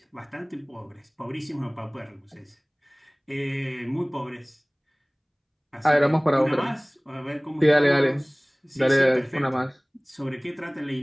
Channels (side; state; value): both; identical; correlation 1.00